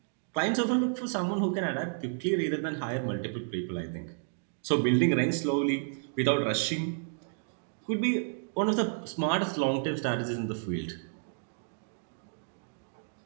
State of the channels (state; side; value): silent; left; digital silence